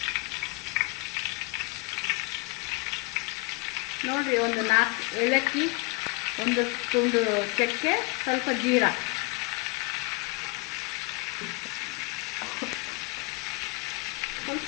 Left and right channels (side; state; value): right; quieter; 28.5 dB